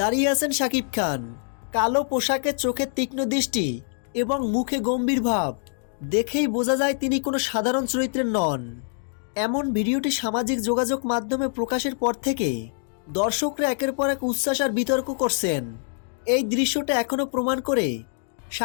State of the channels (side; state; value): right; silent; digital silence